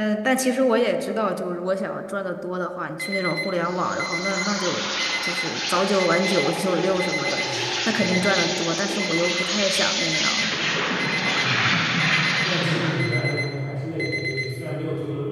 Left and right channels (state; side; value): identical; both; correlation 1.00